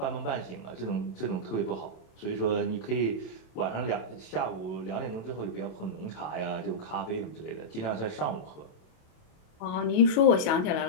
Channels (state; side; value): late; right; 27 ms